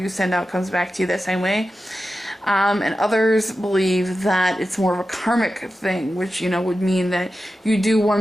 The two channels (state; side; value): normal; both; correlation 0.92